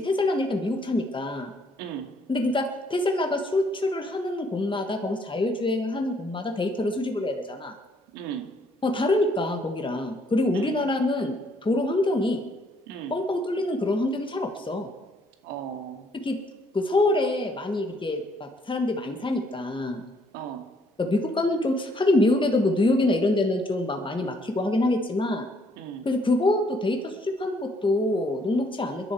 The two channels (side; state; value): both; normal; correlation 0.67